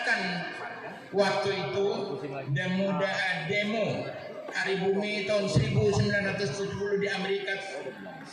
waktu itu, demo Hari Bumi tahun 1970 di Amerika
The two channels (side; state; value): both; identical; correlation 1.00